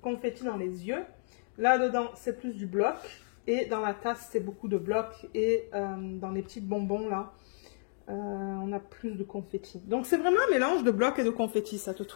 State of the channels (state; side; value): silent; right; digital silence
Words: Confetti dans les yeux. Là-dedans, c'est plus du bloc. Et dans la tasse, c'est beaucoup de blocs. Et dans les petits bonbons, là, On a plus de confetti. Donc c'est vraiment un mélange de blocs et de confetti, cette